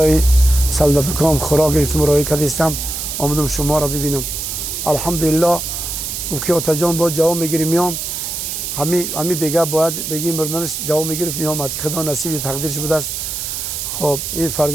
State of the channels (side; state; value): right; noise; hiss, 4 dB below the sound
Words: سلدتکام خوراک گرفتم راه کدیستم آمدم شما را ببینم. الحمدلله. گفت که آتا جان با جواب میگیری میام. همی بگه باید بگی مردنش جواب میگرفت میامد که خدا نصیب تقدیرش بوده است. خب این